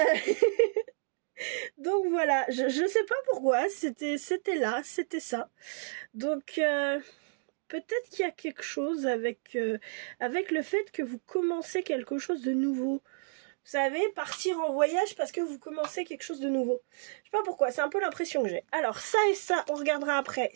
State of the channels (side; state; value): left; silent; digital silence